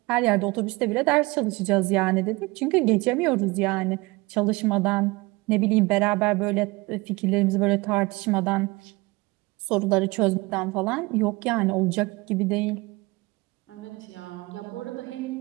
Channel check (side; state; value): left; quieter; 23.3 dB